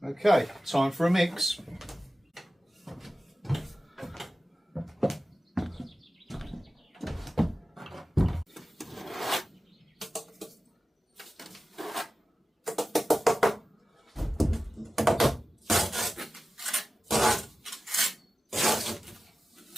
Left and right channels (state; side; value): normal; both; correlation 0.95